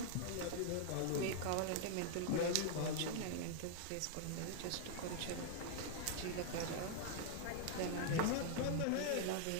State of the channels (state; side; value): different; both; correlation 0.00